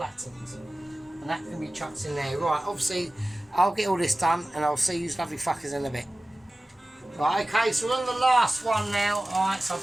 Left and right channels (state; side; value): normal; both; correlation 0.96